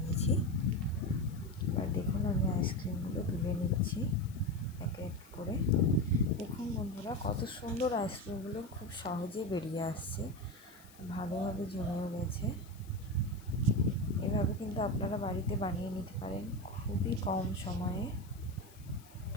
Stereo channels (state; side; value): noise; left; hiss, 23 dB below the sound